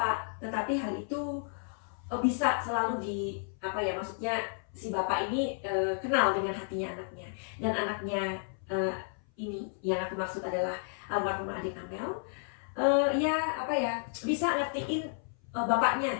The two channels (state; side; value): silent; right; 56 dB below the other